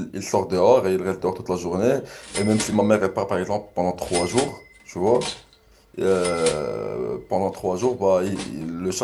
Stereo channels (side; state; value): both; identical; correlation 1.00